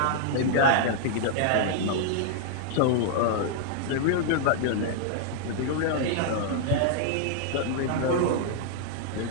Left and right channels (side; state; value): both; different; correlation -0.01